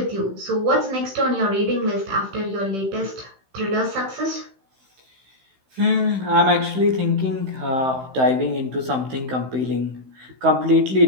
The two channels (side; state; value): left; late; 15 ms